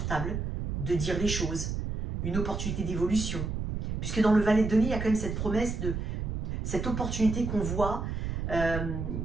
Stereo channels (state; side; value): noise; right; rumble, 3 dB below the sound